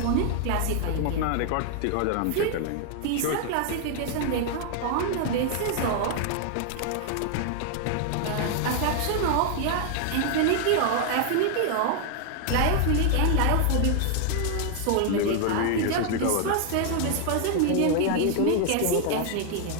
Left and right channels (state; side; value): different; both; correlation 0.00